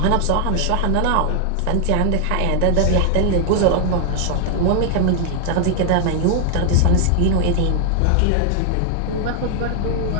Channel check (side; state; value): both; different; correlation 0.00